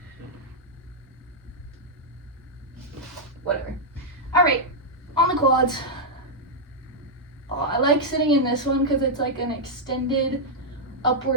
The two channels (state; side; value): normal; both; correlation -0.05